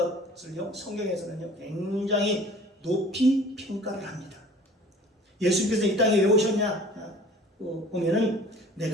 성경에서는요 굉장히 높이 평가를 합니다. 예수께서 이 땅에 왜 오셨냐 보면은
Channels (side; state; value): both; normal; correlation 0.47